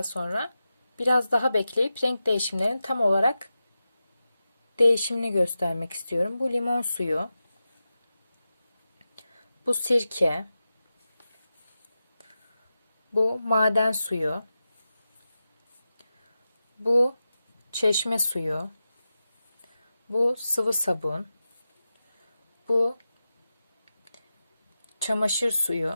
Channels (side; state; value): both; inverted; correlation -0.92